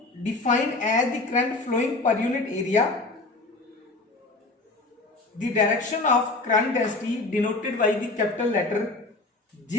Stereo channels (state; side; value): quieter; right; 3.3 dB